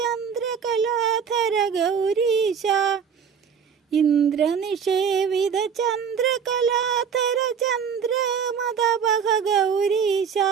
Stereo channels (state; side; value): quieter; left; 6.9 dB